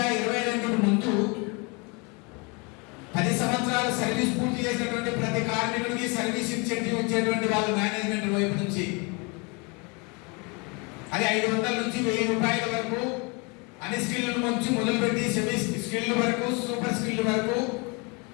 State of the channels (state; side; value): quieter; right; 30.5 dB